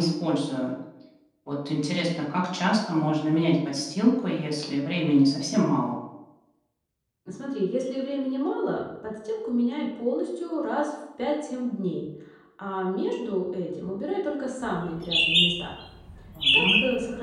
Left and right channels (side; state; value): both; identical; correlation 1.00